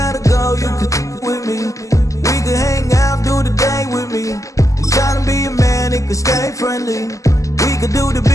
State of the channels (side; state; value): right; late; 0.16 ms